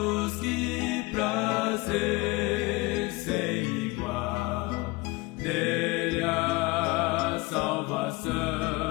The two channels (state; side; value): quieter; right; 23.5 dB